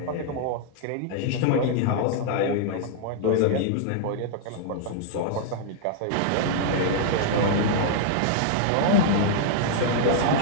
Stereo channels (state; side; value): different; both; correlation -0.01